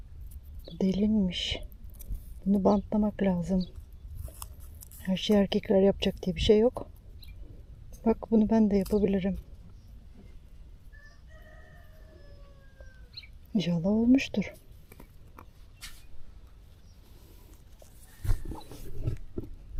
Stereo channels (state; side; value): identical; both; correlation 1.00